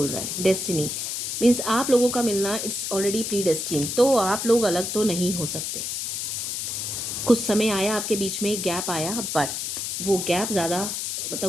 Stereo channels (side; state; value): left; noise; hiss, 3 dB below the sound